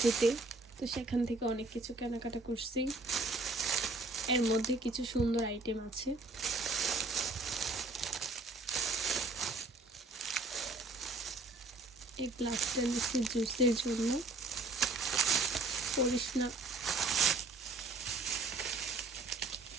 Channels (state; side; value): quieter; left; 3.2 dB